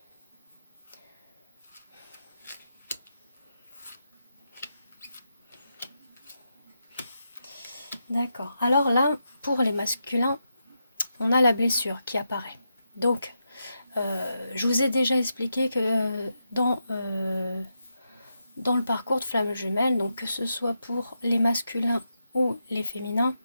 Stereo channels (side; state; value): both; inverted; correlation -0.85